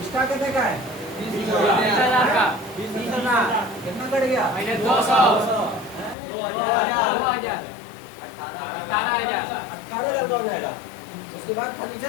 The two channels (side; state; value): right; drops out; at 6.2 s